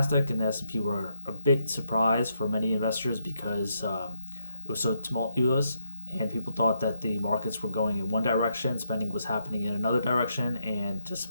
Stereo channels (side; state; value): both; inverted; correlation -0.78